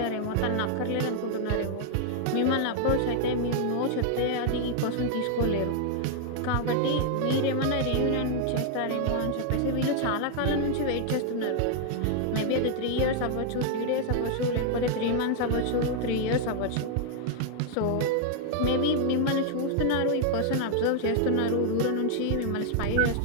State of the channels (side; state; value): both; different; correlation 0.00